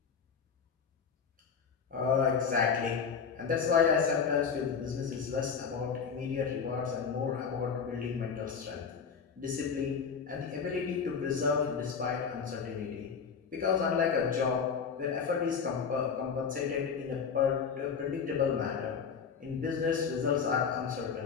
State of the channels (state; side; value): quieter; right; 6.2 dB